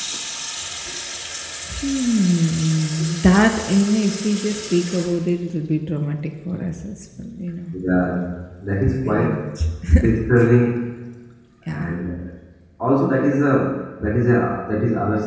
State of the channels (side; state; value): both; identical; correlation 1.00